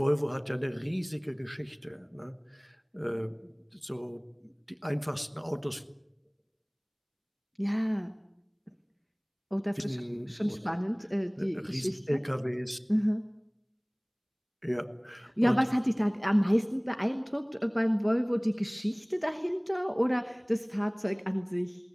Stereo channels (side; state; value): both; identical; correlation 1.00